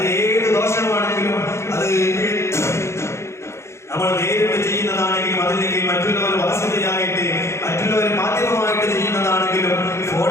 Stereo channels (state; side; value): late; right; 0.13 ms